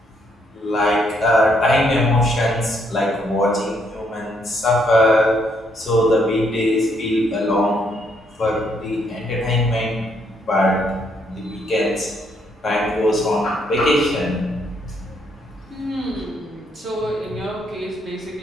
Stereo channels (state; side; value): normal; both; correlation 0.72